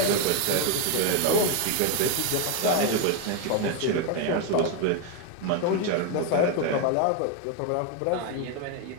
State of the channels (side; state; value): both; different; correlation 0.02